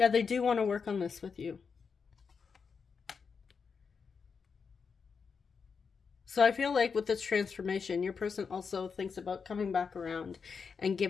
they do want to work on this with you. So I feel like with this transformation, your person also thinks about coming back around and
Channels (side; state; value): right; quieter; 5.7 dB